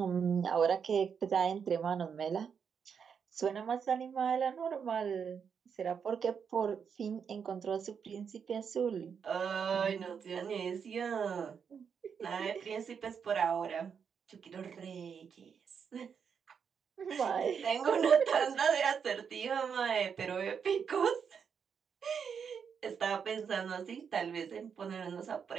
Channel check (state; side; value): quieter; left; 6.8 dB